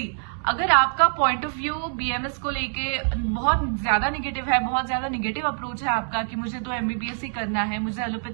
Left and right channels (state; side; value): silent; left; 59 dB below the other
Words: अगर आपका पॉइंट ऑफ व्यू बीएमएस को लेके बहुत ज्यादा निगेटिव है, बहुत ज्यादा निगेटिव अप्रोच है आपका कि मुझे तो एमबीबीएस ही करना है, मुझे